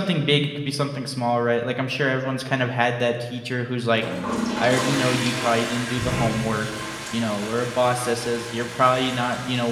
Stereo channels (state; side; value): identical; both; correlation 1.00